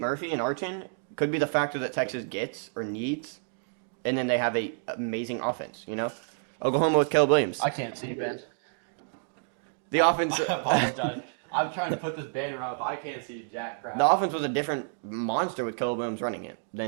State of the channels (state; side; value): silent; left; digital silence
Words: and Arch in could be the factor that Texas gets or needs, and then they have a amazing offense. You know, Oklahoma with Caleb Williams. I can't see Ben. The offense. I apologize. I'm trying to put this banner up. I can't see jack crap. The offense was a different monster with Caleb Williams running it